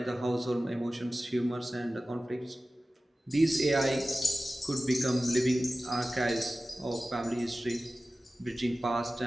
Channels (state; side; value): normal; both; correlation 0.96